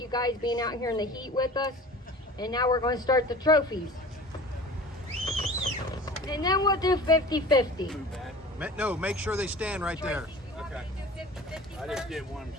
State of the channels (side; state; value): both; normal; correlation 0.41